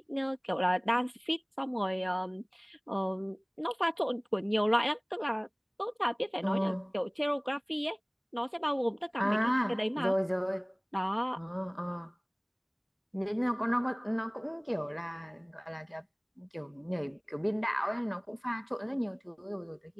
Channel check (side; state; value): both; identical; correlation 1.00